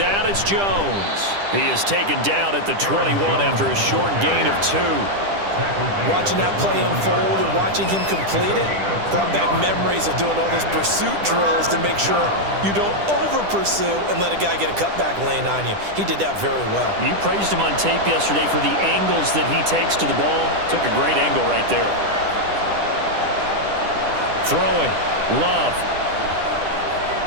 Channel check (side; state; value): left; late; 10 ms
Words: it's Jones. He is taken down at the 21 after a short gain of 2. Watching that play unfold and watching him complete it brought back memories of doing all those pursuit drills to make sure you don't over-pursue and let a guy get a cutback lane on you. He did that very well. You praised him on tape yesterday for the angles that he takes to the ball. Took a great angle right there. Throwing. Love.